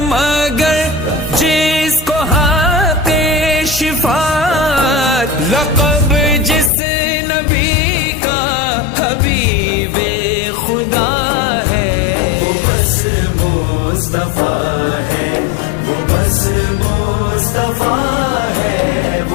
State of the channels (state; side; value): drops out; right; at 6.7 s